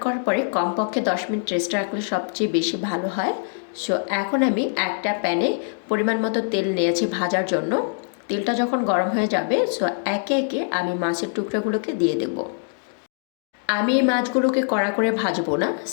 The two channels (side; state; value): right; silent; 63 dB below the other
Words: করার পরে কমপক্ষে 10 মিনিট রেস্ট রাখলে সবচেয়ে বেশি ভালো হয়। সো এখন আমি একটা প্যানে পরিমাণ মতো তেল নিয়েছি ভাজার জন্য। তেলটা যখন গরম হয়ে যাবে, সো একে একে আমি মাছের টুকরোগুলোকে দিয়ে দেব। আমি এই মাছগুলোকে কড়া করে ভাজবো না,